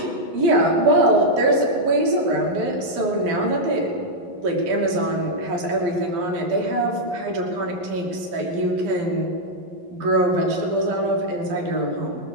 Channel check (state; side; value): late; left; 11 ms